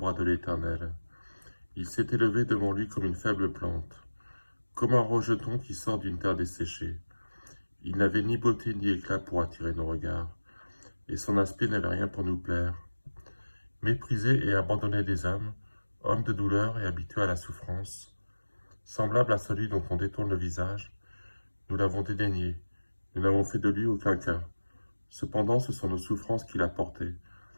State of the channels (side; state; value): both; inverted; correlation -1.00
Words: de l'Éternel? Il s'est élevé devant lui comme une faible plante, comme un rejeton qui sort d'une terre desséchée. Il n'avait ni beauté ni éclat pour attirer nos regards, et son aspect n'avait rien pour nous plaire. Méprisé et abandonné des hommes, homme de douleur et habitué à la souffrance, semblable à celui dont on détourne le visage, nous l'avons dédaigné, nous n'avons fait de lui aucun cas. Cependant, ce sont nos souffrances qu'il a portées,